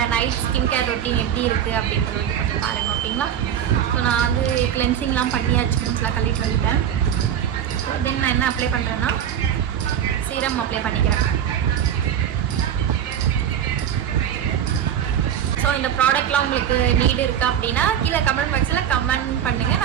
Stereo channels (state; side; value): quieter; left; 9.5 dB